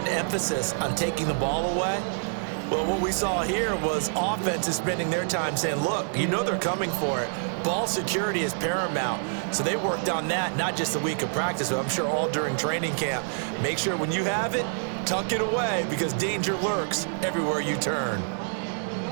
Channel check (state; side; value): silent; left; 56 dB below the other